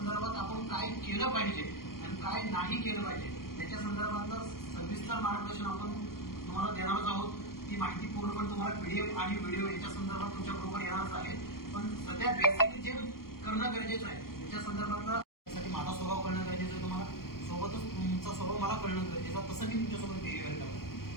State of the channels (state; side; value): late; right; 0.93 ms